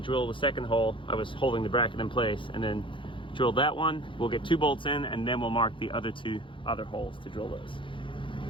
the second hole. I was holding the bracket in place, and then drill that one. We'll get 2 bolts in, and then we'll mark the other 2 holes to drill those.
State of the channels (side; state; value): right; late; 0.25 ms